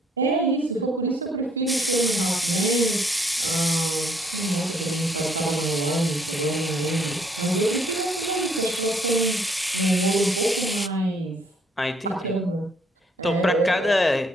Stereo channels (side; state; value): both; normal; correlation 0.66